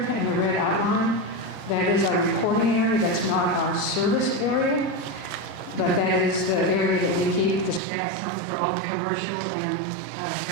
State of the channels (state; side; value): drops out; left; at 7.8 s